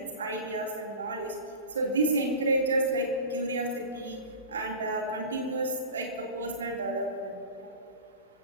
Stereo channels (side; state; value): both; inverted; correlation -0.33